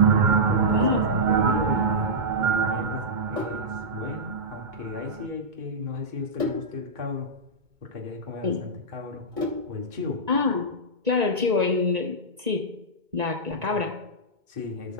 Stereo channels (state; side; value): late; left; 2.2 ms